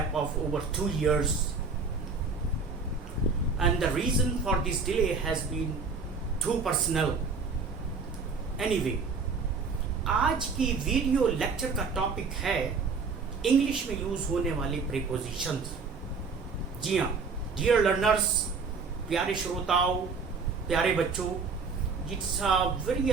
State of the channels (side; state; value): left; quieter; 4.7 dB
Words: of over 2 years. And the reason for this delay has been too personal. Anyway, आज की वीडियो लेक्चर का टॉपिक है इंग्लिश में यूज होने वाले प्रीपोजिशंस। जी हाँ, डियर लर्नर्स, प्यारे श्रोताओं, प्यारे बच्चों, it's a very